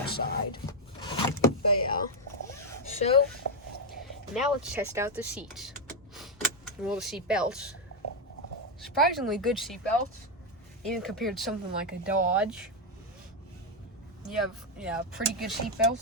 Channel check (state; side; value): normal; both; correlation 0.03